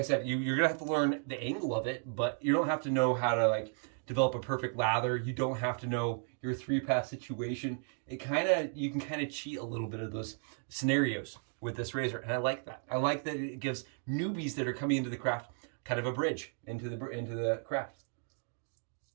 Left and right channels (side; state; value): left; silent; 55 dB below the other